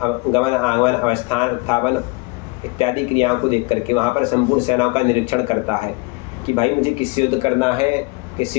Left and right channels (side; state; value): right; quieter; 27.2 dB